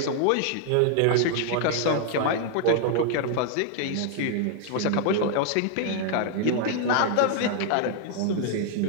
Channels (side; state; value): both; different; correlation 0.00